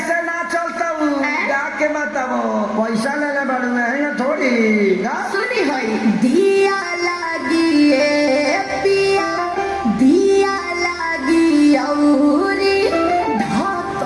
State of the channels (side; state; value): both; identical; correlation 1.00